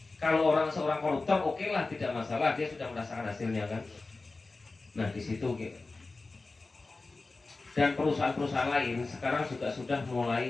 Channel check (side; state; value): right; quieter; 3.6 dB